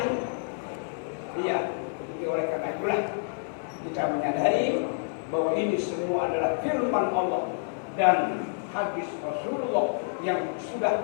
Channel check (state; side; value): silent; right; digital silence